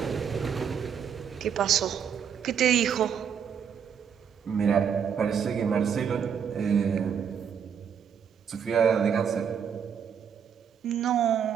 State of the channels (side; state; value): left; quieter; 7.6 dB